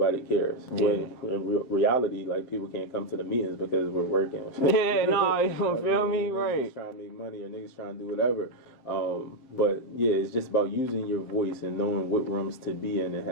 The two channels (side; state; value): right; late; 7.7 ms